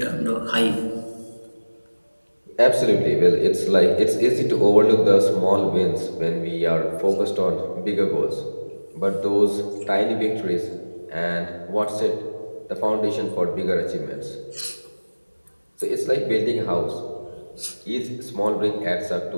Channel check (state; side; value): inverted; both; correlation -1.00